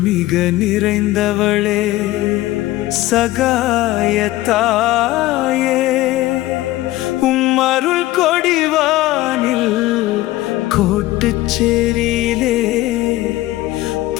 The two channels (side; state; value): right; quieter; 17.1 dB